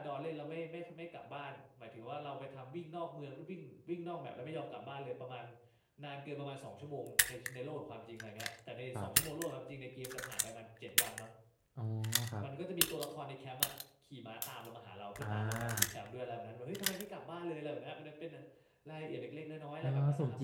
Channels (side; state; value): both; identical; correlation 1.00